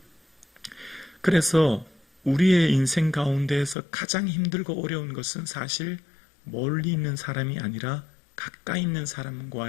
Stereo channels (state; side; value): drops out; right; at 3.8 s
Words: 그래서 우리의 인생 가운데에서 가장 힘들고 어려운 것은 사실 멀리 있는 사람이 아니라 가까이 있는